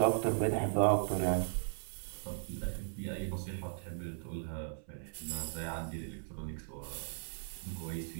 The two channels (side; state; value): left; silent; 53 dB below the other